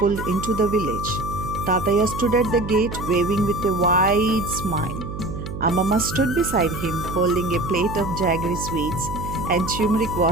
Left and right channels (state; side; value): noise; right; hum, 8 dB below the sound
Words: into the village, Tataya stood at the gate waving with a wide smile. Amama stood beside him holding a plate of jaggery sweets and turmeric